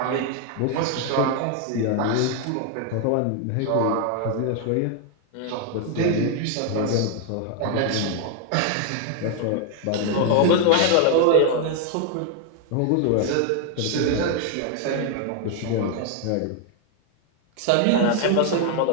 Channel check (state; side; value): different; both; correlation 0.00